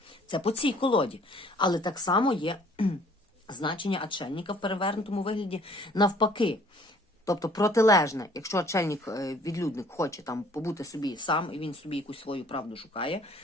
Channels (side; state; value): both; normal; correlation 0.57